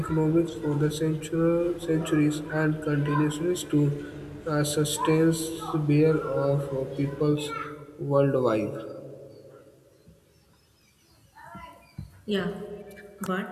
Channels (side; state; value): both; identical; correlation 1.00